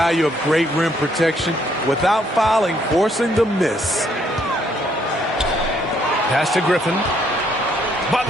of great rim protection without fouling, forcing the miss. Pass to Griffin.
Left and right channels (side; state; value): both; normal; correlation 0.69